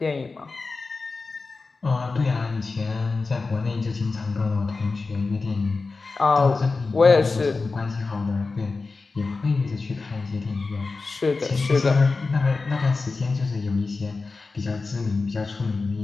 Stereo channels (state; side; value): quieter; right; 4.0 dB